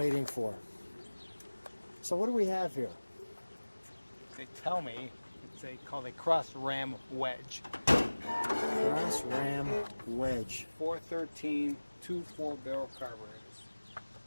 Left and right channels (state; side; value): inverted; both; correlation -1.00